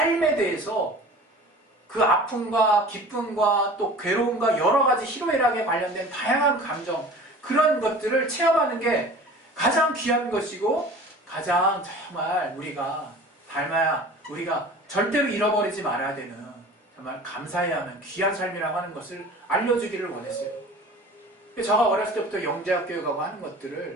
대해서 그 아픔과 기쁨과 또 괴로움과 여러 가지 희로애락에 관련된 다양한 감정, 그런 것들을 체험하는 게 가장 귀한 것이고 가장 정말 우리가 절대로 잃어버리지 말아야 되는 정말 감사해야 하는 귀한 삶이라고 하는 것을 알려주기를 원했어요. 제가 어렸을 때부터 영재학 교육하고 하는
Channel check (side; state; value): both; normal; correlation 0.41